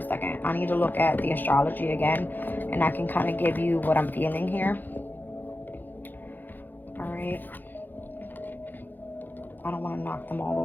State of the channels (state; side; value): late; right; 0.088 ms